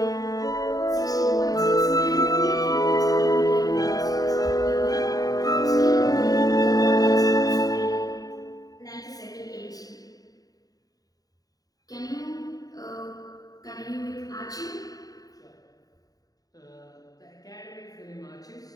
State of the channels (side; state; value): right; late; 0.18 ms